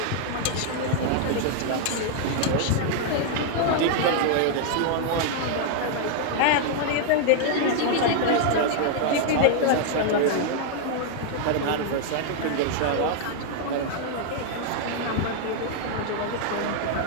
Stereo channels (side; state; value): both; different; correlation 0.00